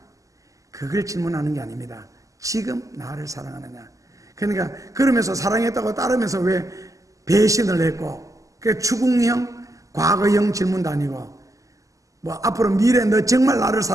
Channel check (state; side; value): late; left; 0.16 ms